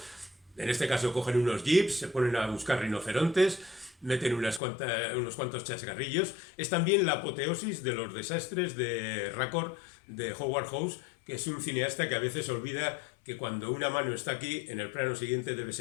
en este caso cogen unos jeeps, se ponen a buscar rinocerontes, meten unos cuantos chascarrillos. Es también la apoteosis de los desastres de Raccord, de Howard Hawks, que es un cineasta que a veces olvida que cuando una mano está aquí, en el plano siguiente debe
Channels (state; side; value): drops out; right; at 4.6 s